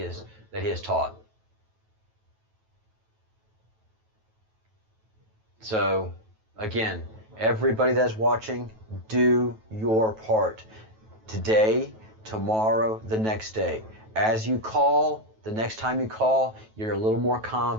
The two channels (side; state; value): left; late; 9.2 ms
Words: has taught. So, again, everybody that's watching, do your part. Today, tomorrow, the next day. As you call, The next time you call, you're a little more